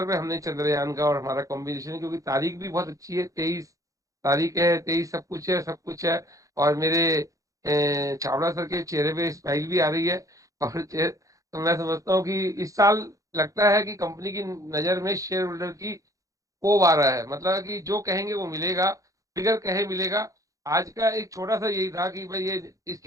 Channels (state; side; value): late; left; 0.16 ms